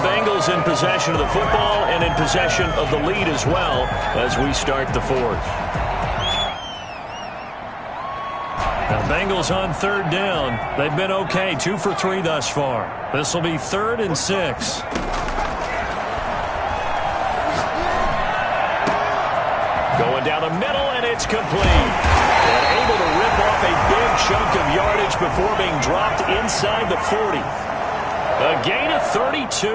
in possession of the football and in possession of the lead as well as we start the 4th. Now Bengals on 3rd down. They've been okay. 2 for 3 thus far. This will be 3rd and 6. Going down the middle, and it's complete. And able to rip off a big chunk of yardage before being dropped inside the 40. A gain of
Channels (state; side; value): identical; both; correlation 1.00